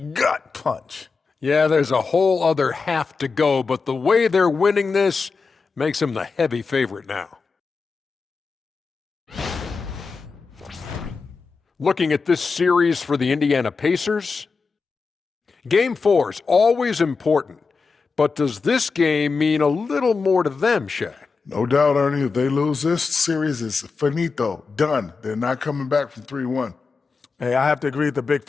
punch. Yeah, there's a whole other half to go, but the way they're winning this makes them the heavy favorite now. Looking at this series for the Indiana Pacers, Game 4 is always important, but does this game mean a little more to them, Shaq? No doubt, Ernie. If they lose this series, it's finito, done. They're not coming back from 3-1. Hey, I have to agree with the big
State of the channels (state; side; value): quieter; right; 4.7 dB